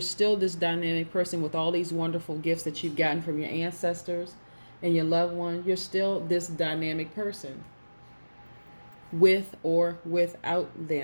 still this dynamic person with all these wonderful gifts that you've gotten from your ancestors and your loved one. You're still this dynamic person, with or without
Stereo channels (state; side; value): inverted; both; correlation -1.00